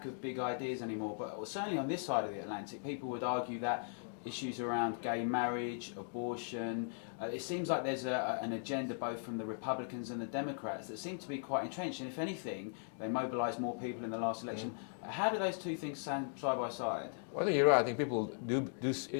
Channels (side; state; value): right; silent; digital silence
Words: of big ideas anymore, but certainly on this side of the Atlantic, people would argue that issues around gay marriage, abortion, it seems like there's an agenda both from the Republicans and the Democrats that seem to be quite entrenched, and if anything, they mobilised more people in the last election. How do those two things stand side by side? Well, I think you're right. I think people